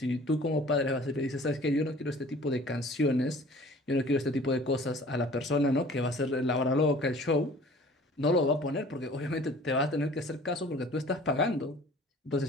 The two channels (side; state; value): both; normal; correlation 0.48